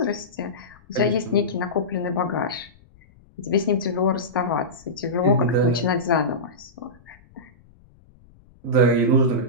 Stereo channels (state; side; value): noise; left; rumble, 28 dB below the sound